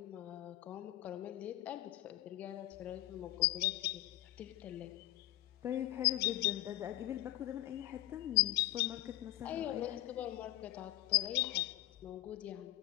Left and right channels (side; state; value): right; quieter; 16.0 dB